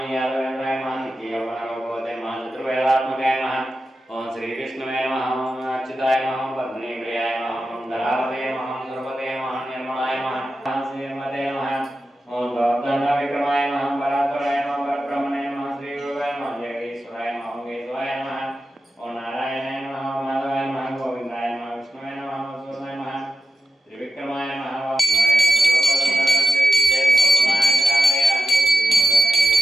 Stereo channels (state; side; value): normal; both; correlation 0.89